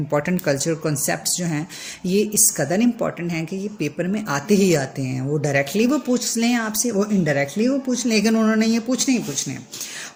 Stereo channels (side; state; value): both; identical; correlation 1.00